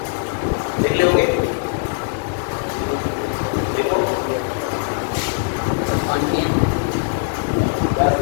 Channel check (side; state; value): right; silent; digital silence